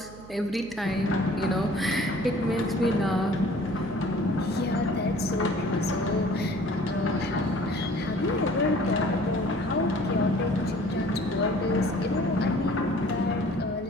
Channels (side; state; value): right; noise; hum, 19 dB below the sound